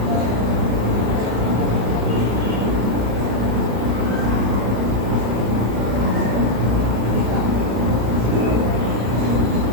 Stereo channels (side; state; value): left; late; 34 ms